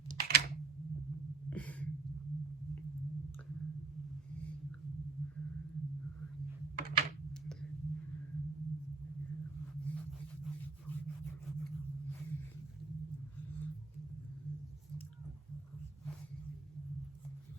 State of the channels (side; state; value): left; quieter; 4.1 dB